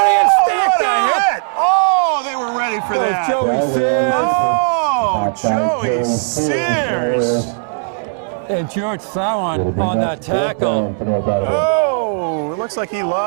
stacked up. Hit. Oh, they were ready for that. Joey Sears. Oh, Joey Sears. And George Sowan on that tackle. Oh, it looks like he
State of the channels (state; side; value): silent; left; digital silence